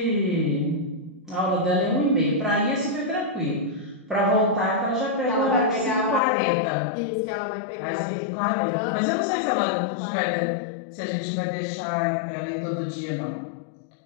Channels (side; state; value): right; drops out; at 6.2 s